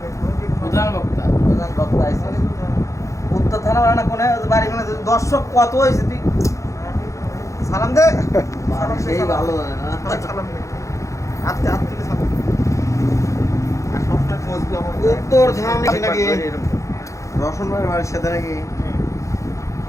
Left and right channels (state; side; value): late; right; 0.15 ms